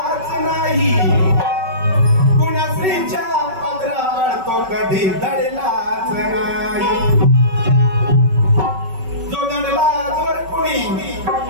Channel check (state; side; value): late; left; 5.3 ms